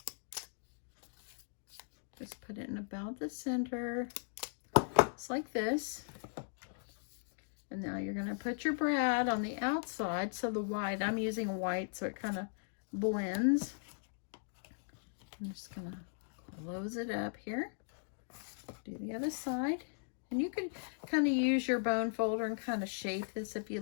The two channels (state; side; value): silent; right; digital silence